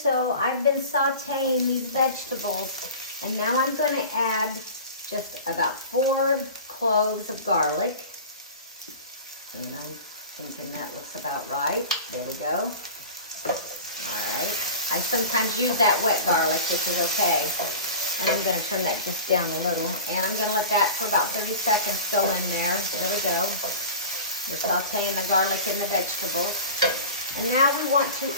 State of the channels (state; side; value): inverted; both; correlation -0.36